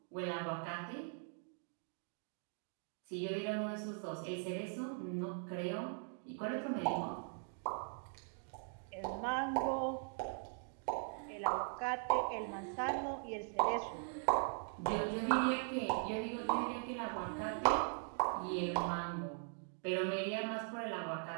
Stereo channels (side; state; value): left; silent; 51 dB below the other